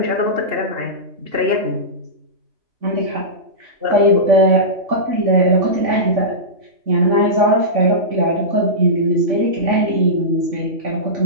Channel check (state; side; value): late; left; 3.5 ms